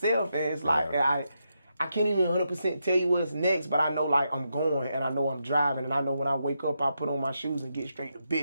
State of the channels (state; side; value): inverted; both; correlation -0.83